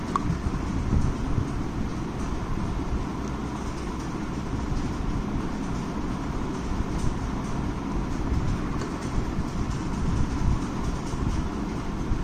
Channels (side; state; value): both; identical; correlation 1.00